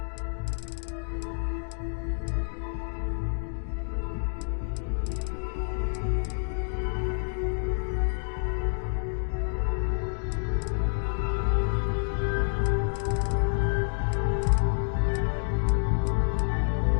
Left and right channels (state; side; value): silent; right; digital silence